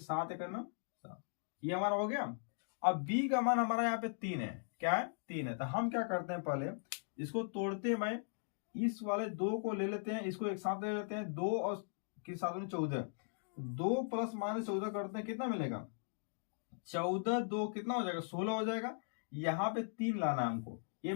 × 7, ये हमारा हो गया। अब b का मान हमारा यहाँ पे 3 है, क्या है, 3 है। तो हम क्या करते हैं, पहले इसको तोड़ते हैं भाई, इस वाले 2 को ले लेते हैं, इसको एक साथ ले लेते हैं, 2 और के साथ में 14, 2 + -14 करते हैं, कितना मिलेगा, 14 2 कितना हो जाएगा, 16 हो जाएगा। यहाँ पे 3 लाना है हमको, ये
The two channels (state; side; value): silent; right; digital silence